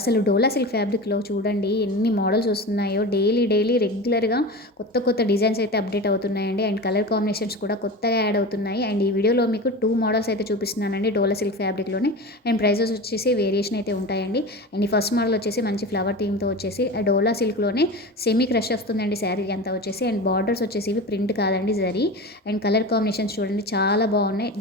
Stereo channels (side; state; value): both; normal; correlation 0.29